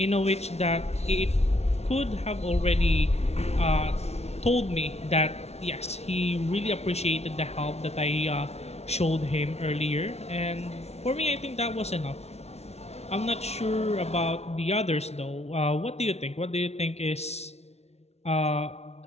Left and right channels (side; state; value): right; late; 0.31 ms